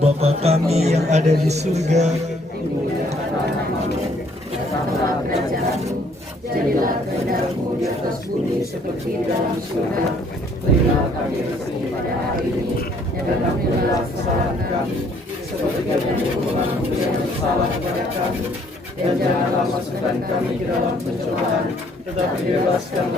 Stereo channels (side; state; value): both; normal; correlation 0.63